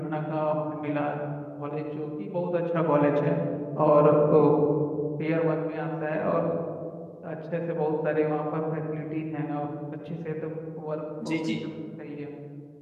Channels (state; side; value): identical; both; correlation 1.00